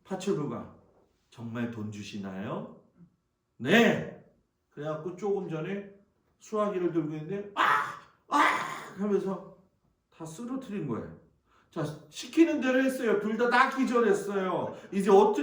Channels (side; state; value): both; identical; correlation 1.00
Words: 파출부가 정말 돈 주시나요? 네. 그래갖고 조금 전에 수화기를 들고 있는데 하면서 다 쓰러뜨린 거예요. 자, 시키는 대로 했어요. 둘 다 기절했어요. 이제